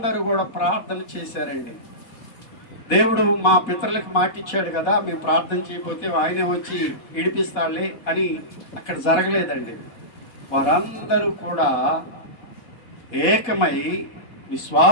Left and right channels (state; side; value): late; right; 4.1 ms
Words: కూడా ప్రార్థన చేశారండి. దేవుడు మా పితరులకు మాట ఇచ్చాడు కదా, మేము ప్రార్థన చేయకపోతే ఆయనే వచ్చి విడిపిస్తాడులే అని అక్కడ జరగలేదండి. వారందరూ కూడా ఏకమై